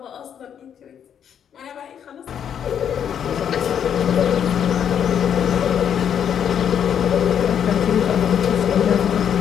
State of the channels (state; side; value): quieter; right; 8.6 dB